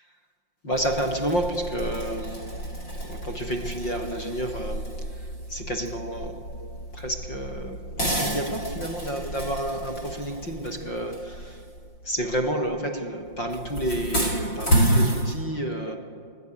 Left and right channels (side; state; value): right; late; 5.7 ms